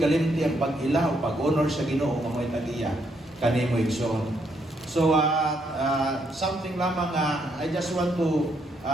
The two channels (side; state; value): both; normal; correlation 0.75